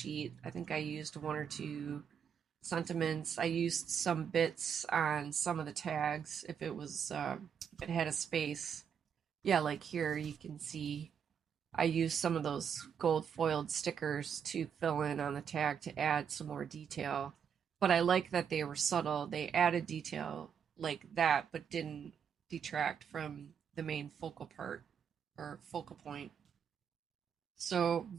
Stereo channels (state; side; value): quieter; left; 7.6 dB